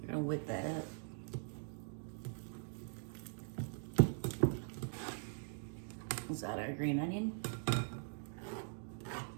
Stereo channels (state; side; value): silent; left; digital silence